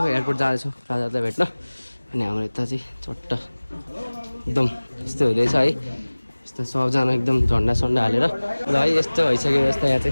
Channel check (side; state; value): both; inverted; correlation -1.00